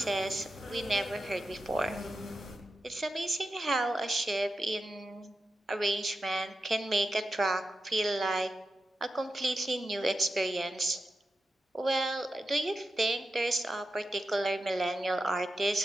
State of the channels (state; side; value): normal; both; correlation 0.90